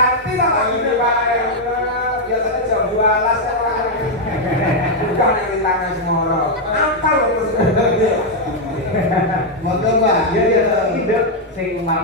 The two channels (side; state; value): both; normal; correlation 0.00